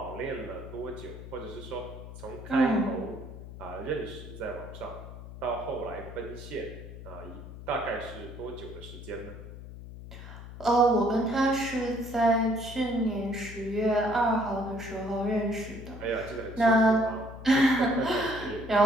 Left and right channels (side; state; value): left; noise; hum, 13 dB below the sound